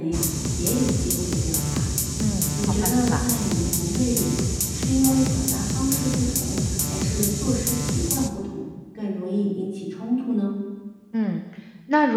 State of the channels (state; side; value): identical; both; correlation 1.00